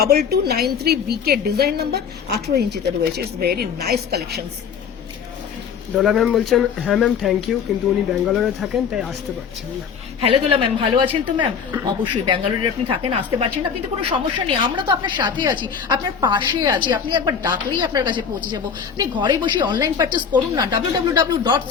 BK ডিজাইন নাম্বার, 18 ইঞ্চিতে রয়েছে। It's very nice collections. Dola ma'am বলছেন হ্যাঁ ম্যাম থ্যাংক ইউ, কিন্তু উনি ব্যাঙ্গালোরে থাকেন তাই আসতে পারছেন না। হ্যালো দোলা ম্যাম, ভালো আছেন তো ম্যাম? অবশ্যই ব্যাঙ্গালোরে আপনি থাকেন, আসতে পারছেন না কিন্তু কোনো সমস্যা নেই, আমরা তো আপনার সাথে আছি, আপনার পাশে আছি। আপনি একবার ডাকলেই আপনার কাছে পৌঁছে যাবো। আপনি ঘরে বসে অনলাইন পারচেস করুন না,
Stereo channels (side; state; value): right; quieter; 6.8 dB